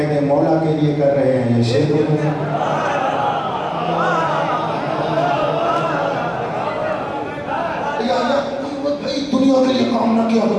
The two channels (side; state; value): both; identical; correlation 1.00